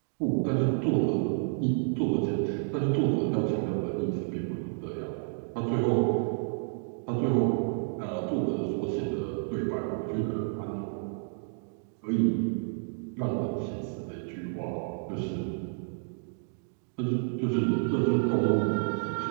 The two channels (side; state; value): left; silent; digital silence